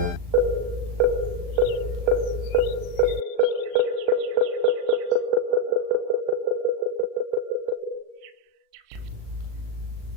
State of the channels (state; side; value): late; left; 38 ms